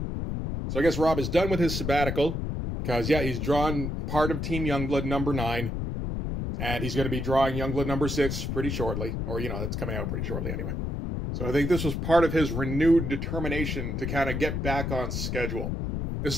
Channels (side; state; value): left; noise; rumble, 2 dB below the sound